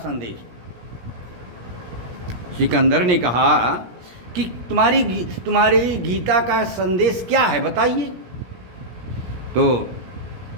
सिकंदर ने कहा कि तुम्हारी गीता का संदेश क्या है, बताइए। तो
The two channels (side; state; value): left; late; 17 ms